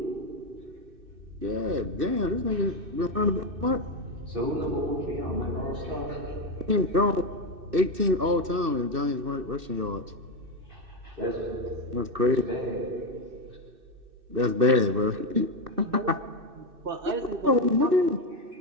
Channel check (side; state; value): left; late; 2.6 ms